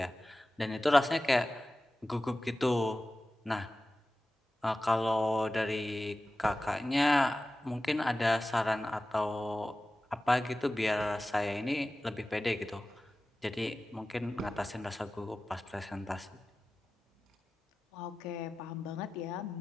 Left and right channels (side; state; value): both; normal; correlation 0.95